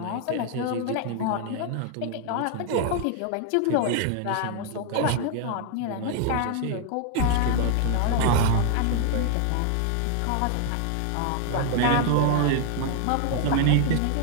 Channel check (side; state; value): both; different; correlation 0.00